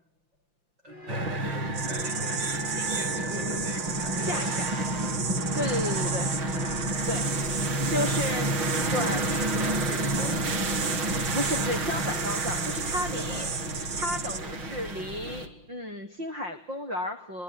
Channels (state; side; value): late; left; 5.7 ms